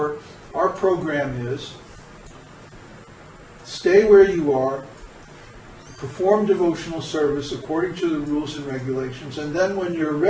our program is stay where you are, perform devotional service according to the rules and regulations, and then when you're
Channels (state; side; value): identical; both; correlation 1.00